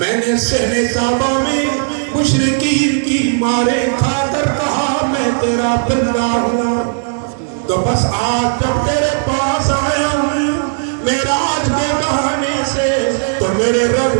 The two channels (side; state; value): left; silent; digital silence